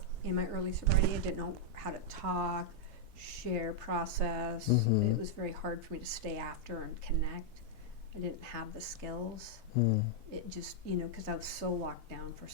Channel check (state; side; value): normal; both; correlation -0.03